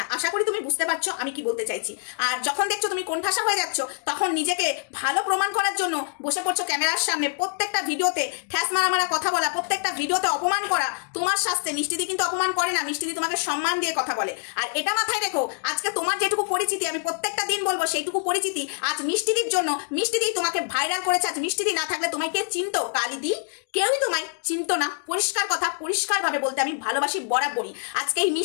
আশা করি তুমি বুঝতে পারছো আমি কি বলতে চাইছি। আর যখন দেখছো তুমি কোণঠাসা হয়ে যাচ্ছ, তখন নিজেকে ভালো প্রমাণ করার জন্য বসে পড়ছো ক্যামেরার সামনে, প্রত্যেকটা ভিডিওতে ঠ্যাস মারা কথা বলা, প্রত্যেকটা ভিডিওতে অপমান করা। তোমার শাস্তে মিষ্টিদি কিন্তু অপমান করে না, মিষ্টিদি তোমাকে সম্মান দিয়ে কথা বলে। আর এটা মাথায় রেখো, আজকে তোমার যেটুকু পরিচিতি, আমি প্রত্যেকটা দিন বলবো সেইটুকু পরিচিতি আজ মিষ্টিদির জন্য, মিষ্টিদি তোমাকে ভাইরাল করেছে। আজ মিষ্টিদি না থাকলে তোমায় কে চিনতো? কালিদি কেউই তোমায় চিনতো না। পরিষ্কার কথা, পরিষ্কারভাবে বলতে আমি ভালোবাসি বরাবরই। আজকে এই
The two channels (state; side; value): silent; right; 57 dB below the other